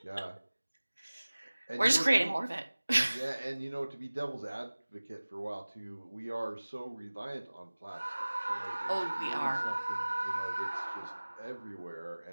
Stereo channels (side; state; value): both; inverted; correlation -1.00